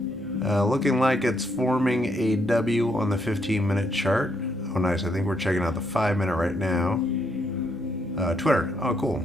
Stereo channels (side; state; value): both; normal; correlation 0.75